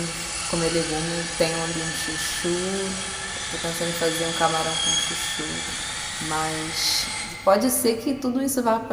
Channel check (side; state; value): both; identical; correlation 1.00